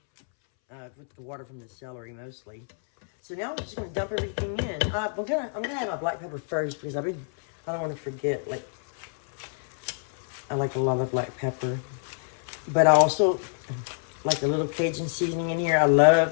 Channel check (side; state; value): right; silent; 60 dB below the other